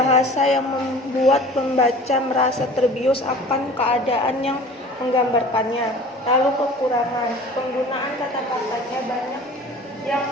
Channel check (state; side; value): normal; both; correlation 0.43